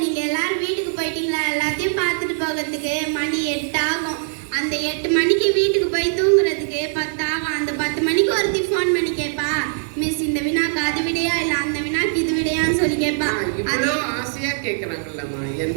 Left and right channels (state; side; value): silent; left; digital silence